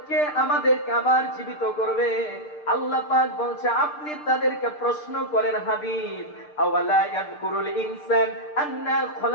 কে আমাদেরকে আবার জীবিত করবে। আল্লাহ পাক বলছে আপনি তাদেরকে প্রশ্ন করেন হাবিব, আওয়ালা ইয়াযকুরুল ইনসান আন্না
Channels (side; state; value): right; late; 6.7 ms